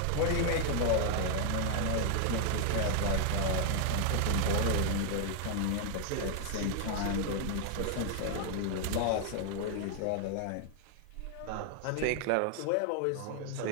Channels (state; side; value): different; both; correlation 0.00